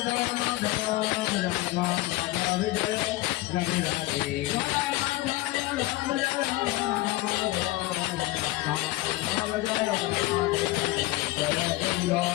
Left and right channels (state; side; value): quieter; right; 19.0 dB